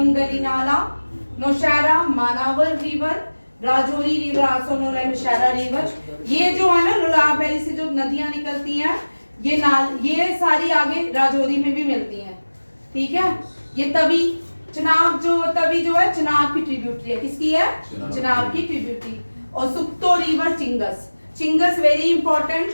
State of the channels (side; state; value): both; inverted; correlation -1.00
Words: नाला, Nowshera Manawar river, Rajouri river also known as Nowshera river. ये जो है ना लोलाब वैली से जो नदियां निकलती हैं, ये सारी आगे राजौरी में भी मिलती हैं। ठीक है, ये तभी चिनाब जो है चिनाब की ट्रिब्यूटरी है। किसकी है? चिनाब की ट्रिब्यूटरी। और shukto river Ching's, Ching's very important.